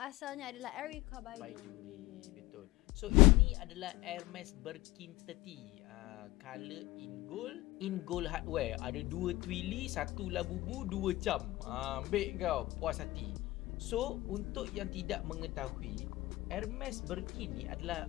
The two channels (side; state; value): right; quieter; 19.0 dB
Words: asalnya adalah Erica Baiduri. Betul. So, ini adalah Hermes Birkin 30. Color in gold hardware. Ada 2 twilly, 1 labubu, 2 cam. Ambil kau, puas hati. So, untuk yang tidak mengetahui, Hermes Birkin ni